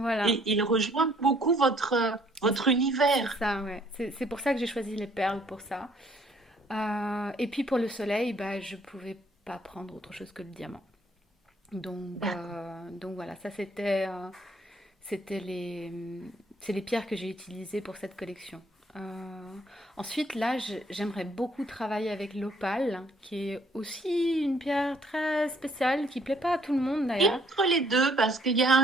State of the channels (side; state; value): both; normal; correlation 0.63